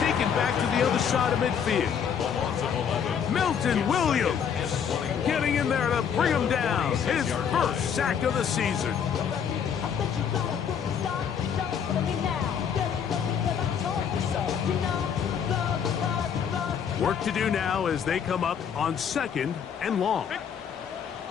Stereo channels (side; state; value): right; quieter; 7.6 dB